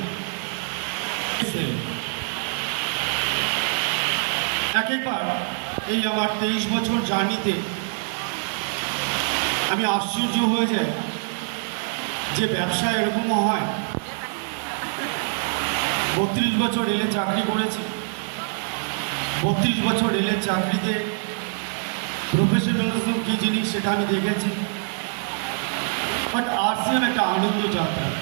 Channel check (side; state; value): left; silent; digital silence